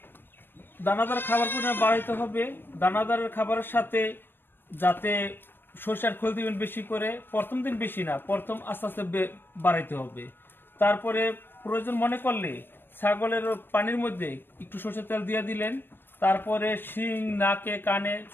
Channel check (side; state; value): right; late; 0.099 ms